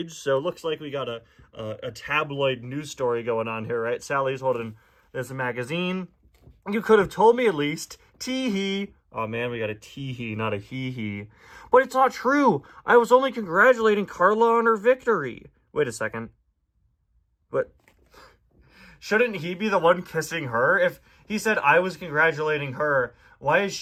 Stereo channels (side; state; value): both; identical; correlation 1.00